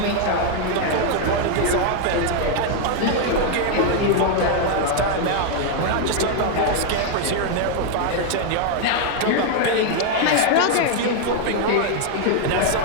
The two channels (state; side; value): different; both; correlation 0.00